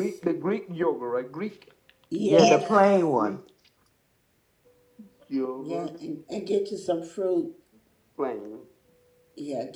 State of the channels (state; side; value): identical; both; correlation 1.00